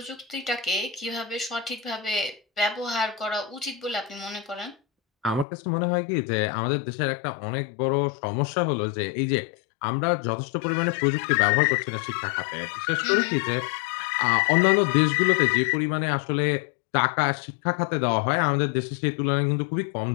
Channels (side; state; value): right; drops out; at 5.5 s